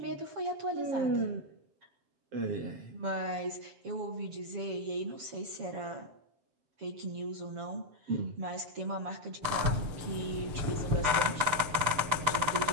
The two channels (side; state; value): left; late; 6.9 ms